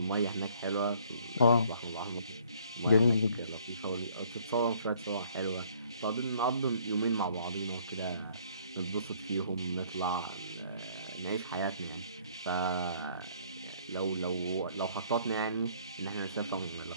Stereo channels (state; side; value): inverted; both; correlation -0.61